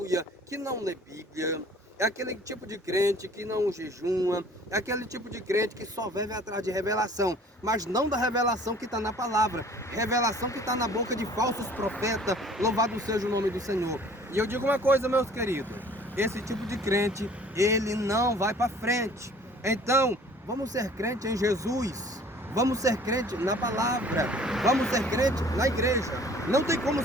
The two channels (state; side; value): normal; both; correlation 0.51